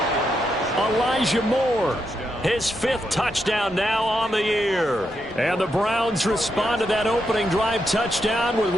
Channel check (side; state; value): both; normal; correlation 0.82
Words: Elijah Moore, his 5th touchdown now on the year. And the Browns respond to that opening drive touchdown with